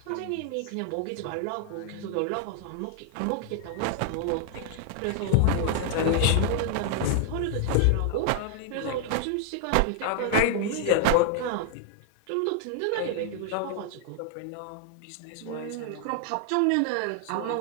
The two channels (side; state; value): both; different; correlation 0.00